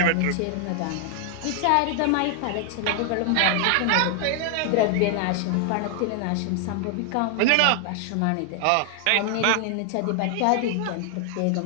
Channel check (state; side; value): different; both; correlation 0.00